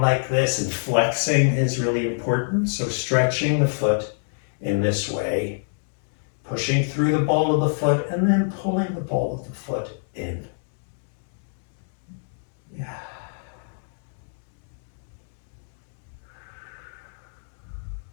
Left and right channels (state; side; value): silent; right; digital silence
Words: like this and flexing is really important. So stretching the foot in this way, pushing through the ball of the foot, and then pulling the ball of the foot in.